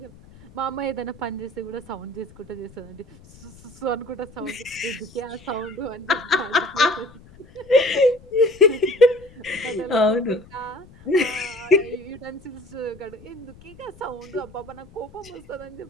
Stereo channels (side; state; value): left; noise; rumble, 22 dB below the sound